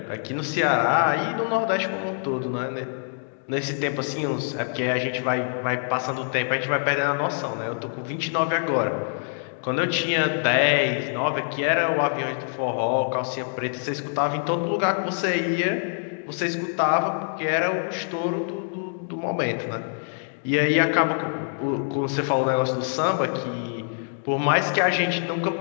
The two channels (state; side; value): silent; right; 62 dB below the other